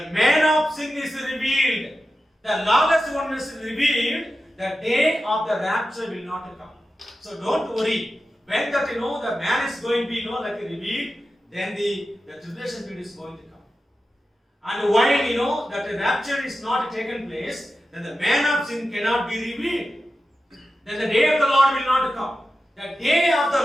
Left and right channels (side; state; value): both; normal; correlation 0.92